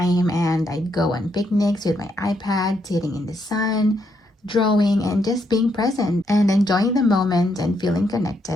and I'd go on picnics with my iPad, sitting in the sun, drawing, and just being present and enjoying the moment and feeling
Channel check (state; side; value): normal; both; correlation 0.77